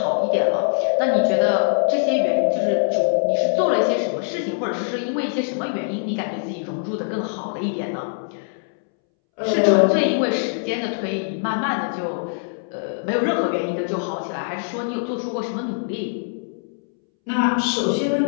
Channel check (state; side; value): silent; right; 64 dB below the other